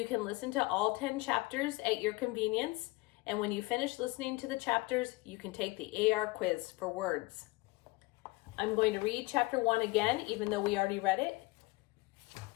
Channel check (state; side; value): quieter; right; 22.7 dB